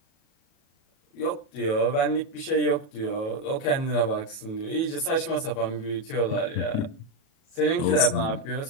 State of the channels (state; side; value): late; right; 37 ms